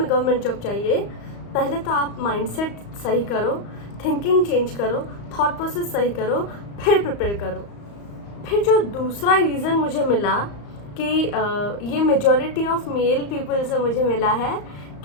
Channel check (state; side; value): late; right; 35 ms